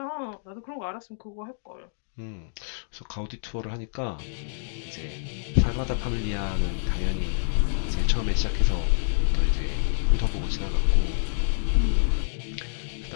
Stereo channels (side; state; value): right; silent; digital silence